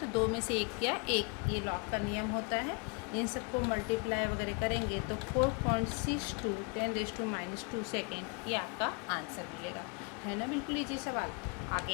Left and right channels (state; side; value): quieter; right; 32.9 dB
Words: तो 2 में से 1 क्या 1, ये लॉग का नियम होता है। इन सबको मल्टीप्लाई वगैरह करेंगे तो 4.62 10⁻² सेकेंड ये आपका आंसर मिलेगा, है ना। बिल्कुल इजी सवाल। आगे